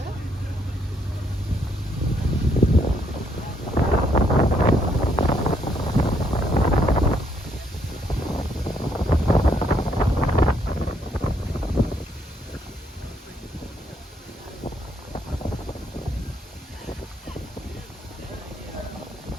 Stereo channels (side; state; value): both; normal; correlation 0.72